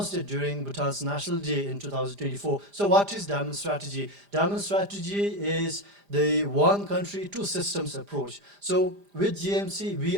it during Bhutan's National Day in 2024. So what is Diamond Strategy? Diamond Strategy is the one country, two systems approach. So with GMC, we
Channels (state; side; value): late; left; 5.0 ms